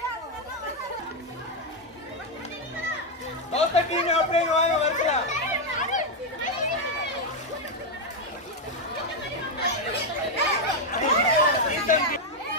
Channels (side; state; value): both; normal; correlation 0.03